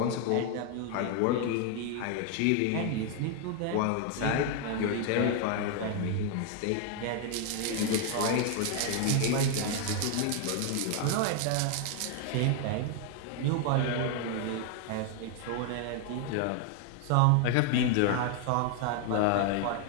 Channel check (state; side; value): different; both; correlation 0.00